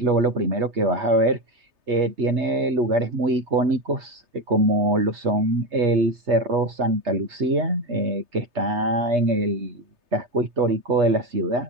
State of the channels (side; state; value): left; late; 3.3 ms